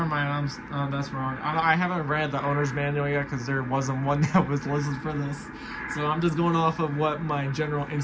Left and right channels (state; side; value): identical; both; correlation 1.00